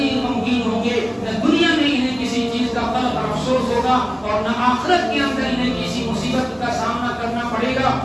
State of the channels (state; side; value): identical; both; correlation 1.00